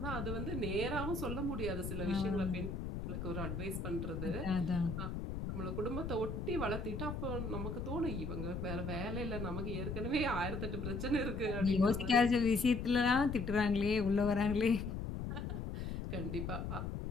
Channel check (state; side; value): noise; left; rumble, 4 dB below the sound